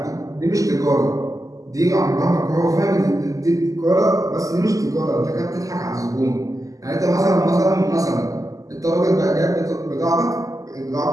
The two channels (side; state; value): left; late; 0.17 ms